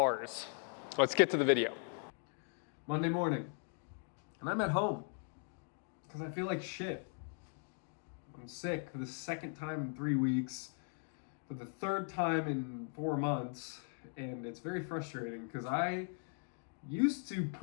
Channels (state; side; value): silent; right; 52 dB below the other